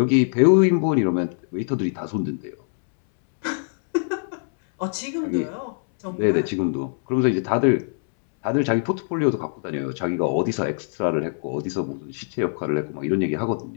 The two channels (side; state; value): right; silent; 63 dB below the other